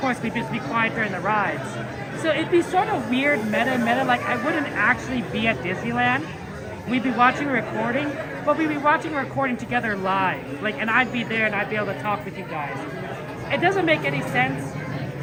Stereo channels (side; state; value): both; identical; correlation 1.00